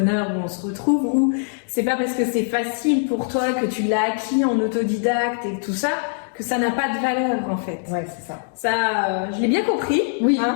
où on se retrouve, où c'est pas parce que c'est facile pour toi, que tu l'as acquis en autodidacte et tout ça, que ça n'a pas de valeur en fait. Ouais, c'est ça. Ça, je l'ai bien compris. Oui.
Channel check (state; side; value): silent; right; digital silence